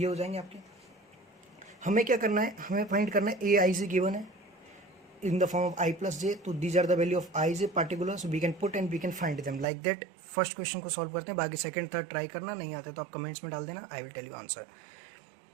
हो जाएंगे आपके। हमें क्या करना है? हमें फाइंड करना है Aij गिवन है in the form of I plus J, तो these are the value of Ij particular, so we can put and we can find them like that. First question को सॉल्व करते हैं, बाकी second third try करना, नहीं आता तो आप कमेंट्स में डाल देना, I will tell you answer.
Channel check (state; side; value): drops out; left; at 9.7 s